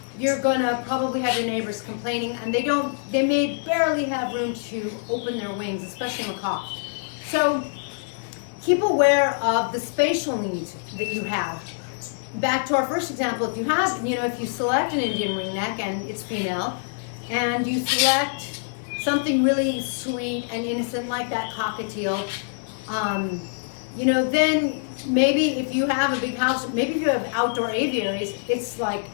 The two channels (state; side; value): silent; right; 62 dB below the other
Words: you're gonna probably have your neighbors complaining, and they may barely have room to open their wings, especially macaws. So keep aware of the spatial needs that you have. Back to our first example, if you select an Indian ringneck and it's female, and you select something really sweet and innocent like that cockatiel, then maybe if you have a big house, maybe if you have outdoor aviaries, it's like